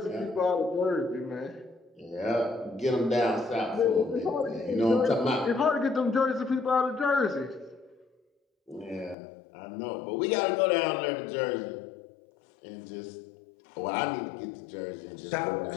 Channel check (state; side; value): drops out; right; at 9.2 s